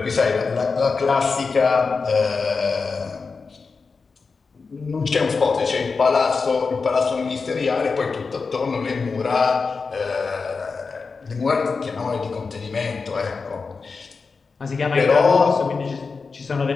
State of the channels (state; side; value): quieter; right; 4.7 dB